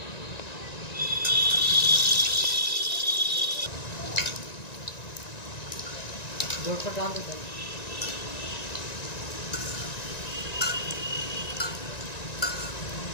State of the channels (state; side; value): late; right; 1.9 ms